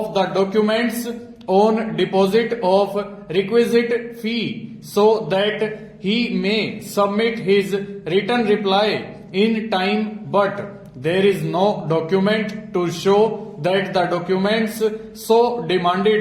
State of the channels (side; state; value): both; identical; correlation 1.00